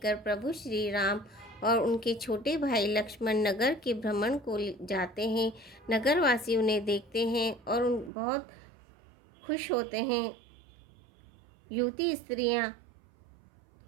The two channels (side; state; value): left; drops out; at 8.1 s